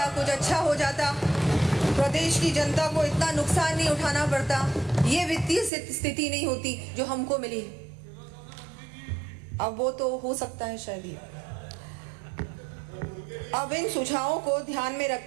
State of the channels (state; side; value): drops out; left; at 5.7 s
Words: कुछ अच्छा हो जाता, प्रदेश की जनता को इतना नुकसान नहीं उठाना पड़ता, ये वित्तीय स्थिति नहीं होती जो हमको मिली है। अब वो तो हो सकता है शायद ही। अब इन सुझावों को ध्यान में